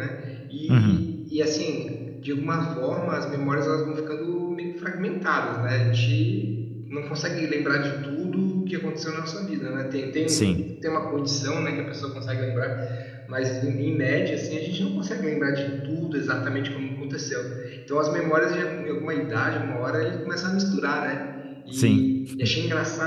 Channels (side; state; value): both; identical; correlation 1.00